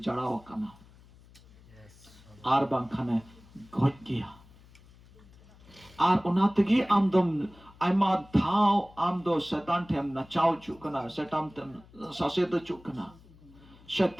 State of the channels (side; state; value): left; noise; hum, 24 dB below the sound